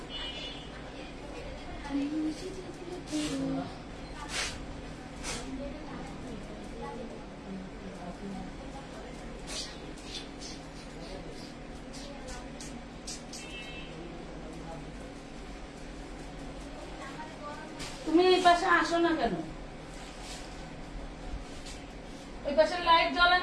তুমি এই পাশে আসো না কেন ওই পাশে লাইট জ্বলে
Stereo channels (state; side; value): identical; both; correlation 1.00